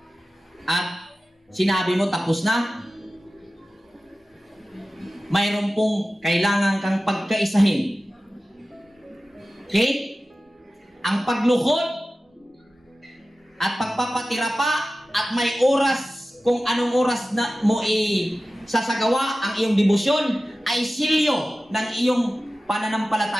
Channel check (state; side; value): normal; both; correlation 0.95